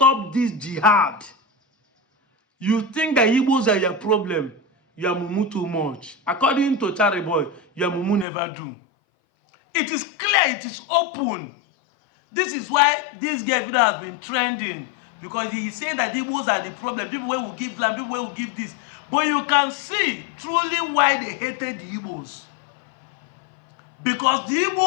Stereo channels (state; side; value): drops out; right; at 8.2 s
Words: this jihad. You think that Igbos are your problem. You are mumu too much. According to Charlie Boy, your mumu never do. It is clear, it is open. This is why this gay video has been trending, because he is saying that Igbos are the problem. People will give land, people will give this. But you can see truly why they hated the Igbos. Because the